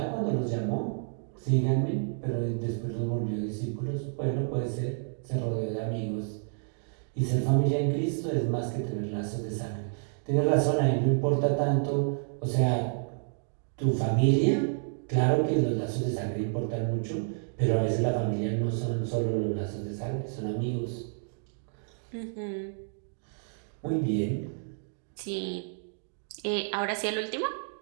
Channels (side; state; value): left; silent; digital silence